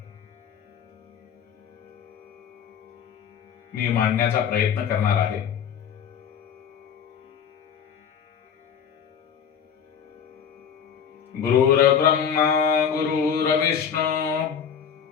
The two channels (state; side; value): quieter; right; 7.8 dB